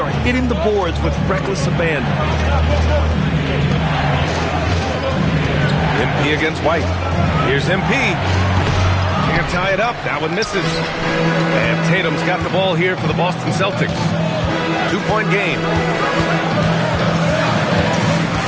hitting the boards with reckless abandon. MP against White. Here's MP. Can't tie it up. That one misses. And Tatum's got the ball here for the Boston Celtics. 2-point game.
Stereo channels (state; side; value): identical; both; correlation 1.00